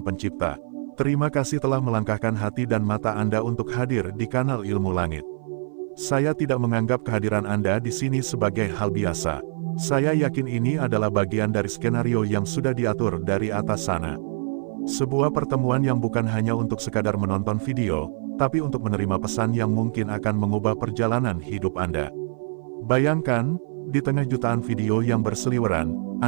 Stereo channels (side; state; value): left; silent; 58 dB below the other